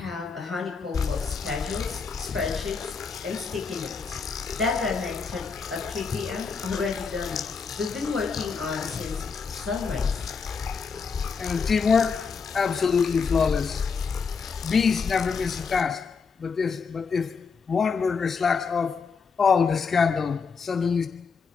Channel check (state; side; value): quieter; right; 5.4 dB